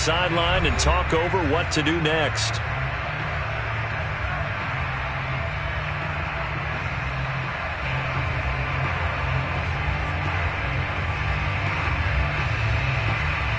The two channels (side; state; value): both; identical; correlation 1.00